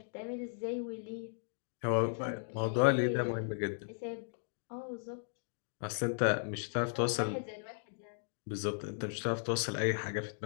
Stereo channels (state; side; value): silent; right; digital silence